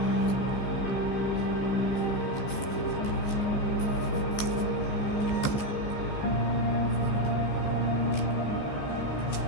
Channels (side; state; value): right; late; 15 ms